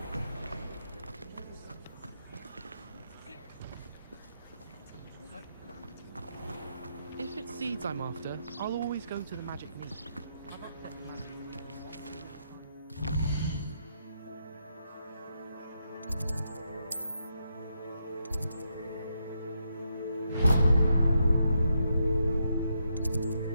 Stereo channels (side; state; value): both; inverted; correlation -0.80